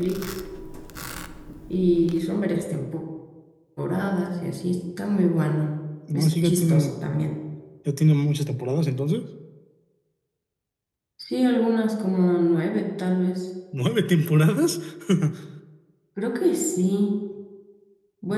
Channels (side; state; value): both; identical; correlation 1.00